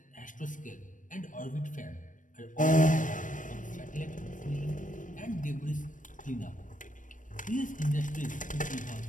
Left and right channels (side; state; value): right; late; 0.38 ms